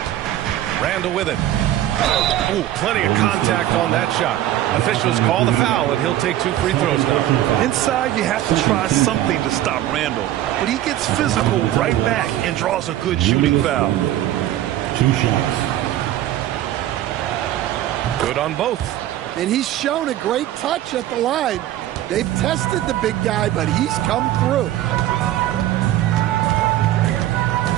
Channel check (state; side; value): quieter; left; 13.3 dB